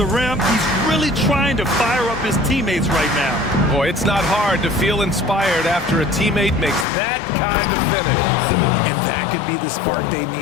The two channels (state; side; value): drops out; right; at 6.9 s